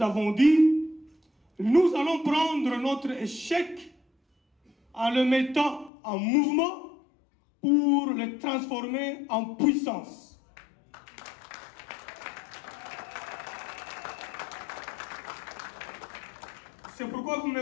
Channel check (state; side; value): drops out; right; at 5.9 s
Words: avons dit. Nous allons prendre notre échec en le mettant en mouvement pour le transformer en puissance. C'est pourquoi vous me